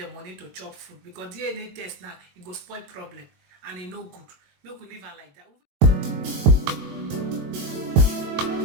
money to chop food because DNA test now it go spoil problem and it no good. Make we leave her like that.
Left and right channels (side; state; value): left; late; 22 ms